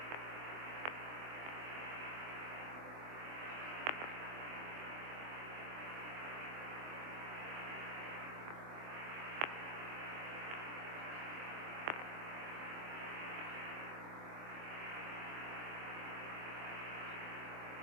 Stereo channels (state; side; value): late; left; 24 ms